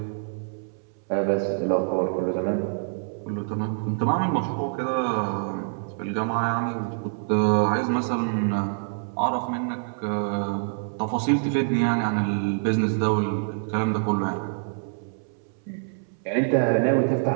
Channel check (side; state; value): left; silent; 61 dB below the other